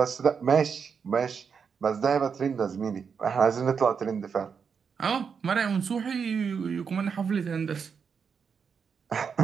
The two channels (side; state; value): left; quieter; 6.3 dB